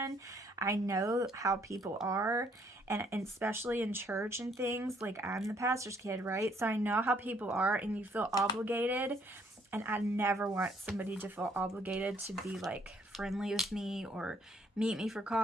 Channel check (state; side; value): normal; both; correlation 0.66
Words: I know how people are. And especially in church and things, like I'm the pastor's kid, right? So I know how people are, and you feel obligated. And I never want somebody to feel obligated to be like friendly with me or meet me for